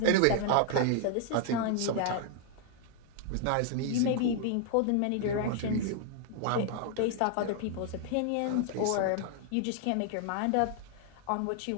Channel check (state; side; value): different; both; correlation 0.00